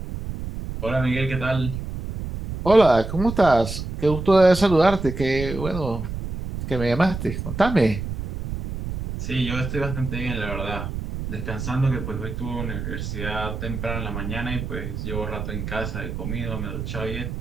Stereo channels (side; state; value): right; noise; rumble, 6 dB below the sound